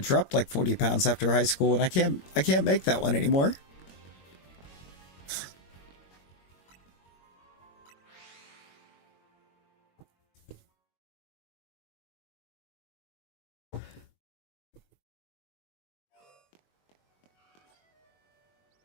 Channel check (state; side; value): late; right; 22 ms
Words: like 40 pounds after high school, and I can't make that one anymore.